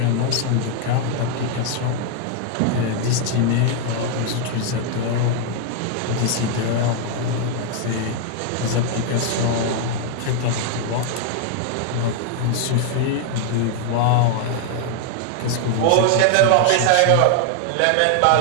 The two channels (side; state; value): both; different; correlation 0.00